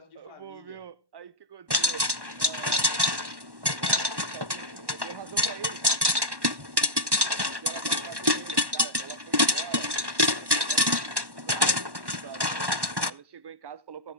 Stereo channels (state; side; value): late; left; 1.1 ms